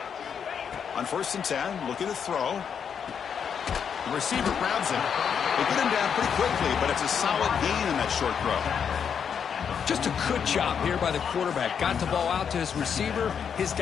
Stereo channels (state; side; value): quieter; right; 7.3 dB